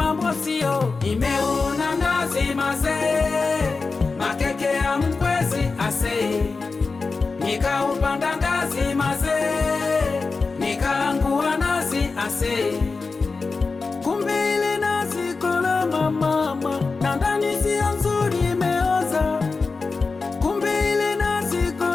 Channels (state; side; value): quieter; right; 4.2 dB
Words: sio. Nimeona nazi mazee, makeke ya mkwezi ase, nikaupanda ngazi mazee, nikaangua nazi ase. Kumbe ile nazi kola mama, na ndani sio nzuri imeoza. Kumbe ile nazi